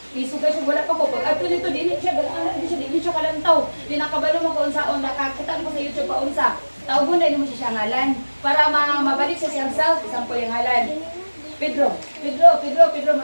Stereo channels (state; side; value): inverted; both; correlation -1.00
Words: Isug siya wala pa ko. Pag adto dito, dili siya kalantaw. Di nakabalo mo ko unsaon, nakakita ko sa YouTube pa unsa. Tawgon na mo siya ngalan para mabalik sa siyang self, isang po yung ngalan. Pedro,